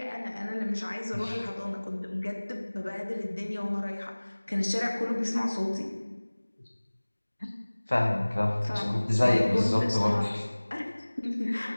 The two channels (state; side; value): inverted; both; correlation -1.00